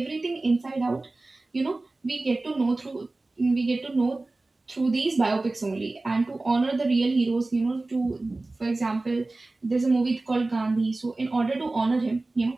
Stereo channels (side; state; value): left; quieter; 3.1 dB